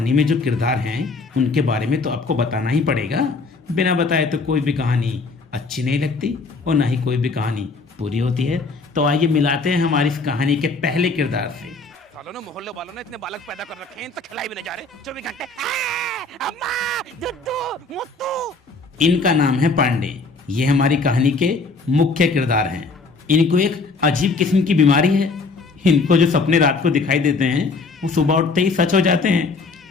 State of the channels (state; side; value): quieter; right; 3.9 dB